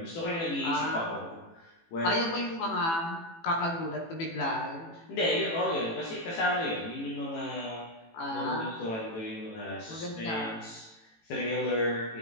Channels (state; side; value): late; right; 18 ms